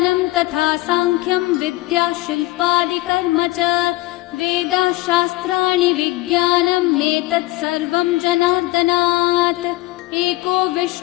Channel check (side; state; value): right; quieter; 19.6 dB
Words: तथा साङ्ख्यं विद्या शिल्पादिकर्म च वेदाः शास्त्राणि विज्ञानमेतत् सर्वं जनार्दनात् एको